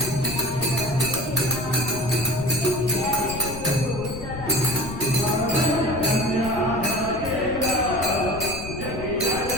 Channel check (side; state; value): left; noise; rumble, 10 dB below the sound